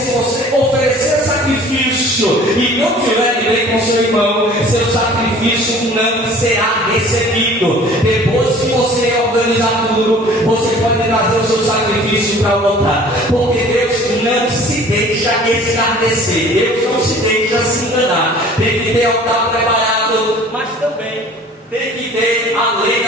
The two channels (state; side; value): normal; both; correlation 0.48